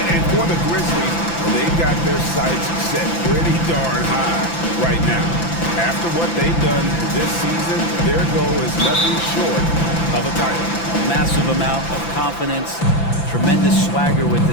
And for the Grizzlies, they've got their sights set pretty darn high right now. After what they've done this season, their goal is nothing short of a title. A massive amount of confidence, tremendous swagger with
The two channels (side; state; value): right; late; 5.9 ms